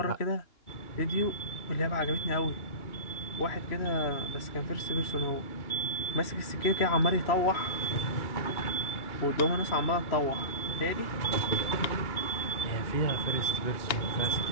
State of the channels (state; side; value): late; right; 2.9 ms